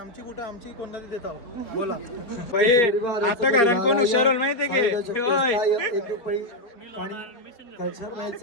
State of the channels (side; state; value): right; late; 4.3 ms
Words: बुटा आमची कोणाला देता बोला भाई आता घरात कोण हुशार होईल माहितीये की होय